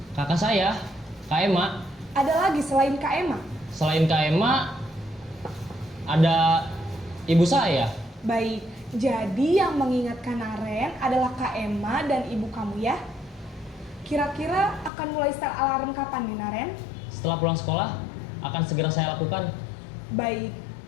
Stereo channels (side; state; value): right; drops out; at 14.9 s